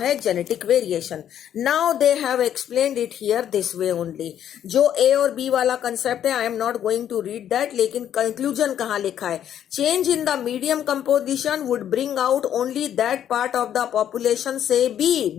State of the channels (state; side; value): quieter; right; 10.1 dB